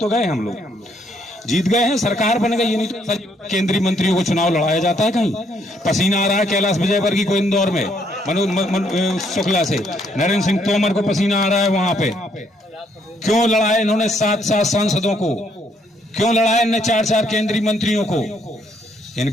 गए हम लोग, जीत गए हैं, सरकार बन गई। ये नहीं तो केंद्रीय मंत्रियों को चुनाव लड़ाया जाता है कहीं। पसीना आ रहा है कैलाश विजयवर्गीय को इंदौर में, मनोज शुक्ला से, नरेंद्र सिंह तोमर को पसीना आ रहा है वहां पे। क्यों लड़ाए इन्होंने 7 सांसदों को, क्यों लड़ाए इन्होंने 4 केंद्रीय मंत्रियों को?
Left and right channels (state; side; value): normal; both; correlation 0.70